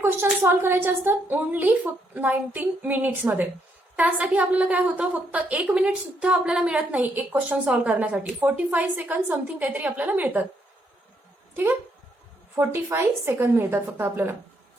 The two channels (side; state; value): both; normal; correlation 0.75